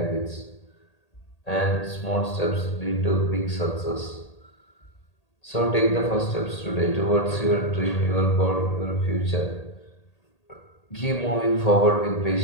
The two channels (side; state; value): right; late; 1.8 ms